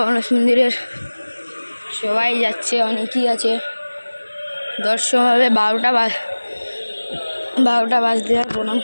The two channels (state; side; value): inverted; both; correlation -1.00